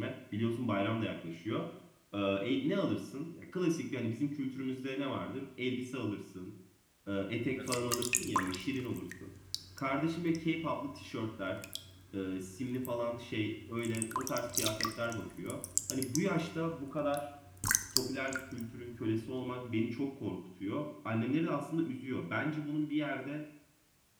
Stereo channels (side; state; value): both; identical; correlation 1.00